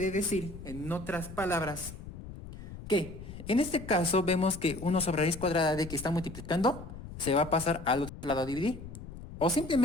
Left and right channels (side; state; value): left; noise; rumble, 12 dB below the sound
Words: decir, en otras palabras, que en este caso vemos que 1 sobre raíz cuadrada de que está multiplicando se va a pasar al otro lado a dividir. O